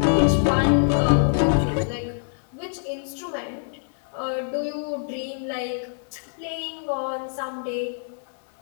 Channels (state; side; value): silent; right; digital silence